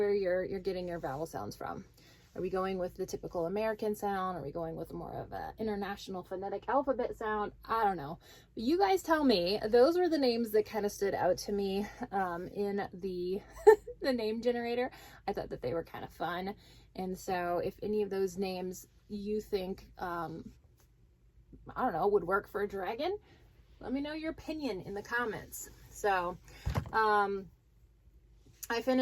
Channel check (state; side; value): identical; both; correlation 1.00